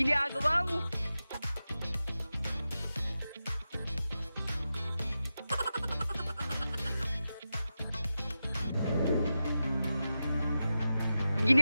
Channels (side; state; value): both; inverted; correlation -0.92